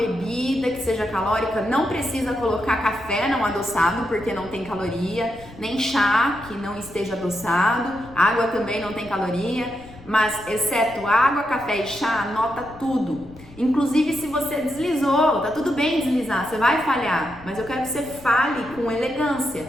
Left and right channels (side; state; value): left; noise; rumble, 20 dB below the sound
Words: que seja calórica. Não precisa colocar café não adoçado porque não tem caloria, nem chá que não esteja adoçado, água também não tem caloria, mas exceto água, café e chá, anota tudo. Inclusive se você deslizou, tá tudo bem deslizar, você vai falhar, mas eu quero que você fale com elegância.